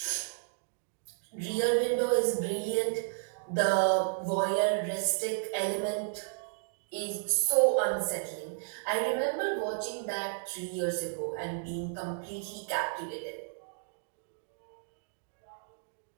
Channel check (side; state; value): left; silent; digital silence